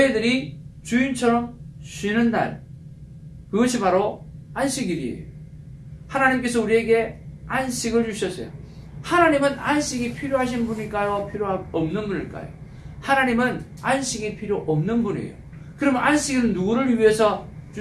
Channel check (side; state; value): both; identical; correlation 1.00